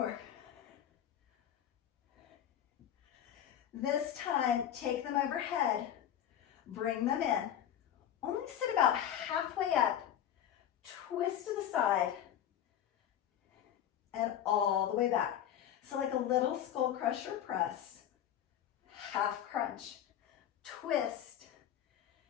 This time, take them overhead, bring them in. Only sit about halfway up, twist to the side, and all the way back. So like a little skull crusher press, half crunch, twist,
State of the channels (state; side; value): quieter; right; 10.3 dB